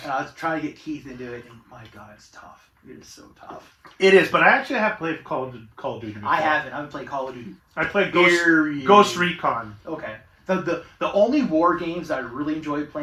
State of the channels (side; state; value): both; identical; correlation 1.00